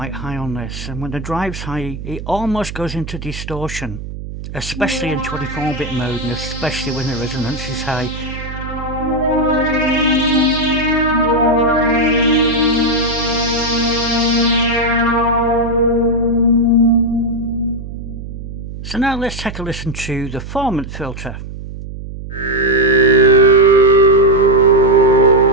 high on this, and when the drive's high it almost goes into distortion, especially in 24-bit mode, and especially when the resonance is high. So now let's take a listen to the Formant filter.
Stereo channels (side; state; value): right; noise; hum, 10 dB below the sound